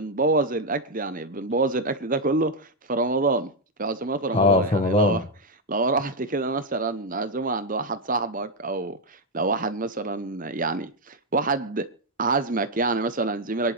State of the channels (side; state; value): both; normal; correlation 0.02